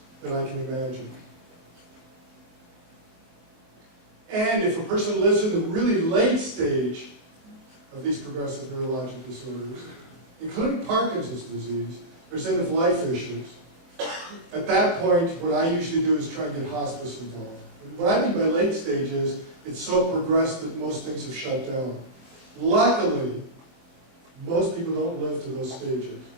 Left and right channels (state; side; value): late; left; 23 ms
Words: that I can imagine. And if a person lives in the really late stage of these progressive neurologic disorders, including Parkinson's disease, there's end-of-life issues. At that point, what I usually do is try and get hospice involved. And what I mean by late stage is, it's so progressed that most things have shut down. Luckily, most people don't live to those stages.